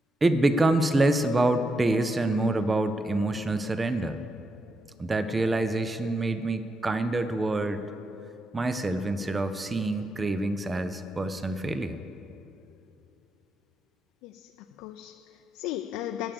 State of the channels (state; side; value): normal; both; correlation 0.83